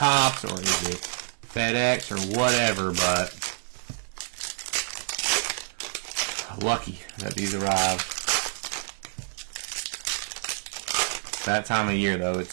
or is it FedEx or whatever? But lucky that these arrived. That time of year, though,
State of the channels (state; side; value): silent; left; 60 dB below the other